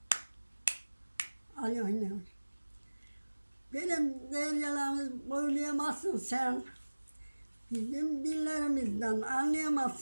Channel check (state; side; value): inverted; both; correlation -1.00